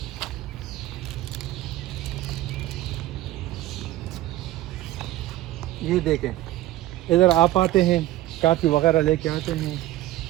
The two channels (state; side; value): quieter; left; 15.6 dB